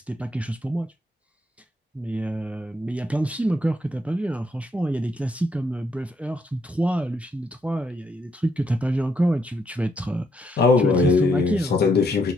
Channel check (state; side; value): normal; both; correlation 0.75